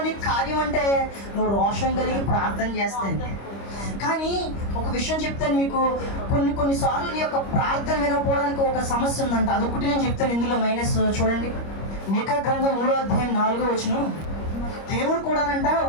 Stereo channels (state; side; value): late; right; 25 ms